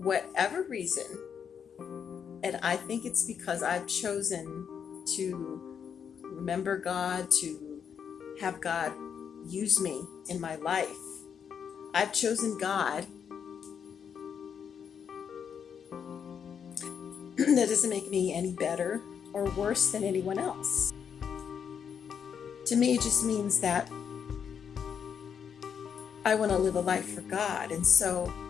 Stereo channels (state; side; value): quieter; right; 7.4 dB